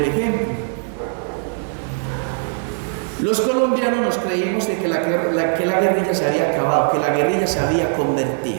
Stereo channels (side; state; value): left; silent; digital silence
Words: ejemplo. Los colombianos nos creímos de que la guerrilla se había acabado, que la guerrilla se había